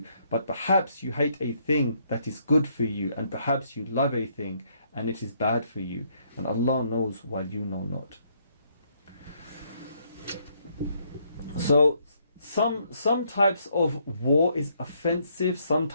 But perhaps you hate a thing that is good for you, and perhaps you love a thing and it is bad for you. And Allah knows while you know not. So some types of war is offensive, some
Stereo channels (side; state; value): both; inverted; correlation -0.71